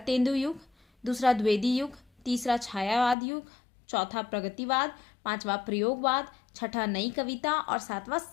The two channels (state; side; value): drops out; right; at 3.2 s